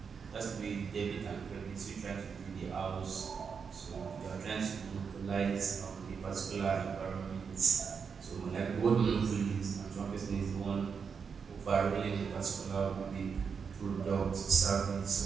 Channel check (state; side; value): quieter; left; 6.1 dB